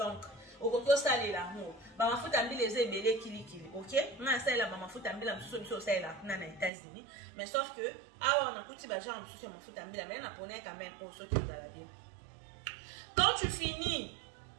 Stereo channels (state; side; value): drops out; left; at 6.7 s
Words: okoki osalela yango ba mafuta mbila eza ebele kilikili. OK? Na salela ba mafuta mbila msusu biso osalela kuna na États-Unis, mais sauf que awa on a kuti ba genre msusu ya mafuta mbila mais na pona quand même pour ceux qui vous allez bien. Quand tu finis,